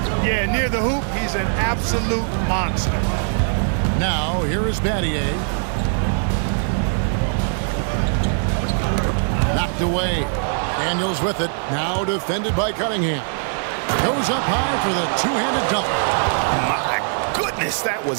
Yeah, near the hoop, he's an absolute monster. Now, here is Battier. Knocked away. Daniels with it. Now defended by Cunningham. Goes up high for the two-handed dunk. My goodness, that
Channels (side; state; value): left; silent; digital silence